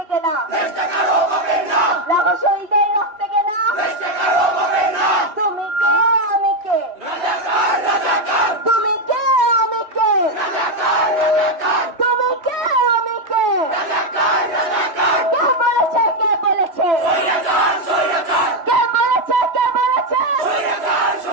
কেনা রহস্যদের রক্তে কেনা তুমি কে আমি কে তুমি কে আমি কে তুমি কে আমি কে কে বলেছে কে বলেছে কে বলেছে কে বলেছে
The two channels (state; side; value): late; left; 3.2 ms